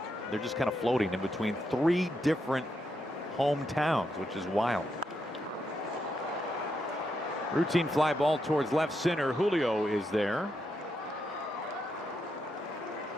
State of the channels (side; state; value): both; normal; correlation 0.82